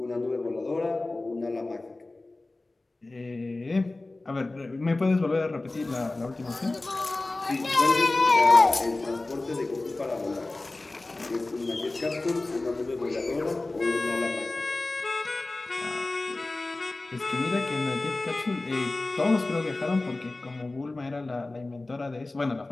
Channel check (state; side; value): quieter; right; 3.0 dB